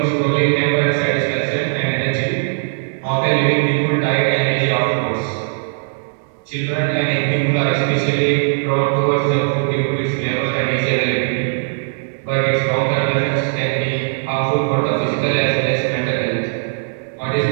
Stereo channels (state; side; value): silent; left; digital silence